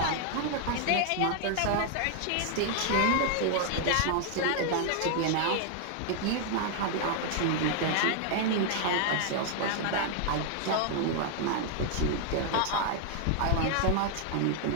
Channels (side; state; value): both; different; correlation 0.00